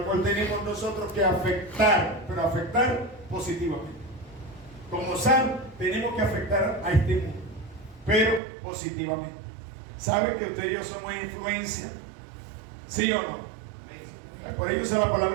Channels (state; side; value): drops out; left; at 8.4 s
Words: cual tenemos nosotros que afectar, pero afectar positivamente. Como sal, tenemos que afectar a este mundo, pero positivamente. ¿Sabe que usted y yo somos influencia? ¿Sí o no? Por ello usa la